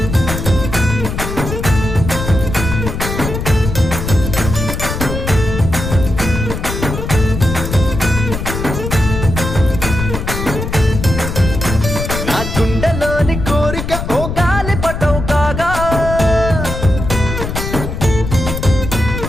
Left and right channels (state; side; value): noise; left; rumble, 5 dB below the sound